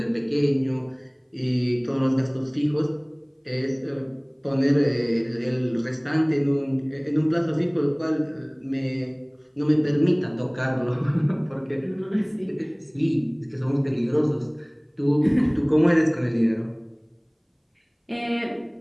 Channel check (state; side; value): identical; both; correlation 1.00